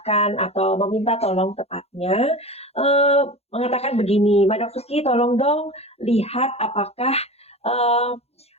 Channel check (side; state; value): right; late; 0.30 ms